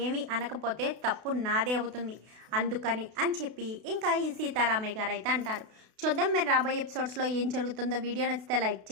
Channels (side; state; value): left; late; 32 ms